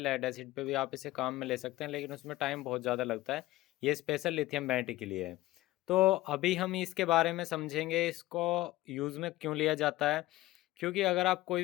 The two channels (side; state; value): right; quieter; 17.4 dB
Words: लेड एसिड पे भी आप इसे काम में ले सकते हैं लेकिन उसमें टाइम बहुत ज़्यादा लगता है। ये स्पेशल लिथियम बैटरी के लिए है। तो अभी हम इसके बारे में समझेंगे, इसको यूज़ में क्यों लिया जाता है। क्योंकि अगर आप कोई